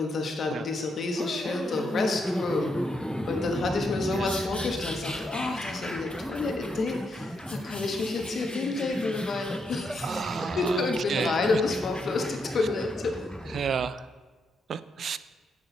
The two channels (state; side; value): normal; both; correlation 0.79